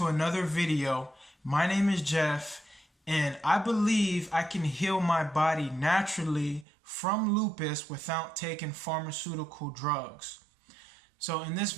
another video. My name is Jeff, and I believe I can heal my body naturally from lupus without taking pharmaceutical drugs. So in this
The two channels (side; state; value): left; drops out; at 6.7 s